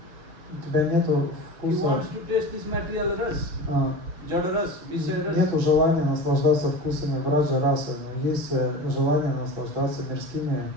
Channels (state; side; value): late; left; 6.7 ms